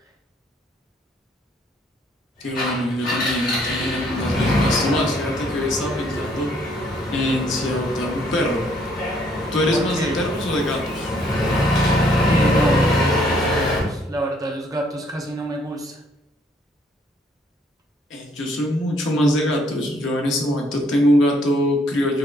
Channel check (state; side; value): normal; both; correlation 0.66